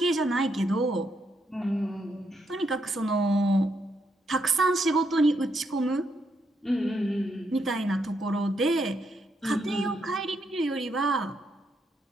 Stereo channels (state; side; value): normal; both; correlation 0.78